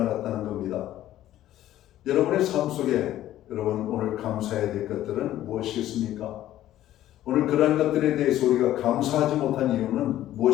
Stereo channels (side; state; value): right; quieter; 13.3 dB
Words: 겁니다. 여러분의 삶 속에 여러분 오늘 감사해야 될 것들은 무엇이겠습니까? 오늘 그러한 것들에 대해서 우리가 감사하지 못한 이유는